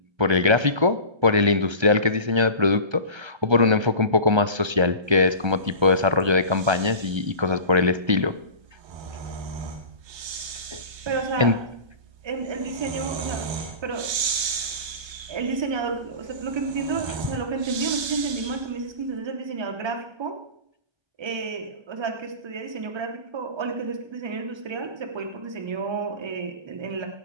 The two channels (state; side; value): late; left; 1.3 ms